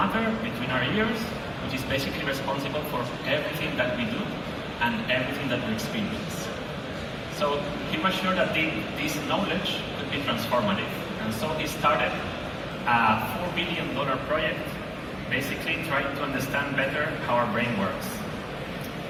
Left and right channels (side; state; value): both; identical; correlation 1.00